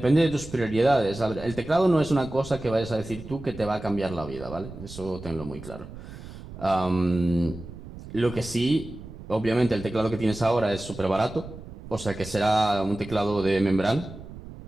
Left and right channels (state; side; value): noise; right; rumble, 14 dB below the sound